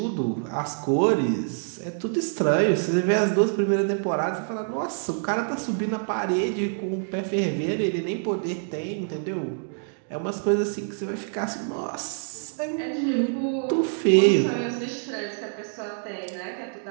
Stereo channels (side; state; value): left; silent; digital silence